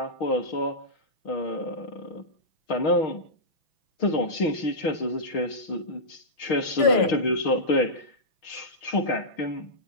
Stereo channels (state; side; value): late; right; 6.1 ms